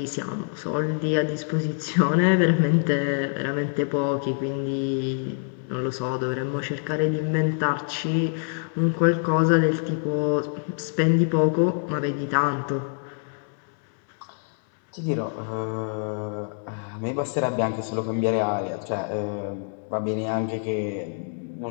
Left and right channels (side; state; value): right; silent; 59 dB below the other